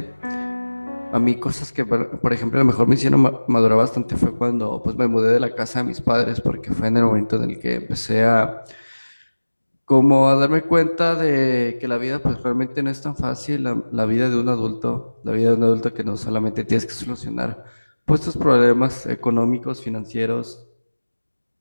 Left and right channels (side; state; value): both; inverted; correlation -1.00